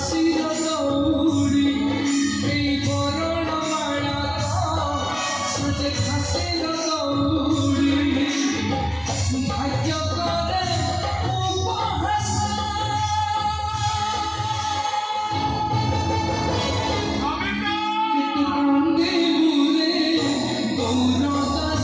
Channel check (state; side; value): identical; both; correlation 1.00